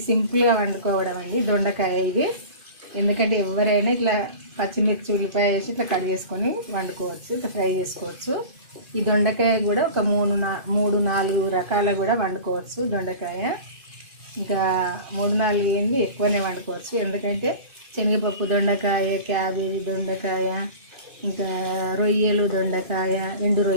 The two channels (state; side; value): late; left; 2.5 ms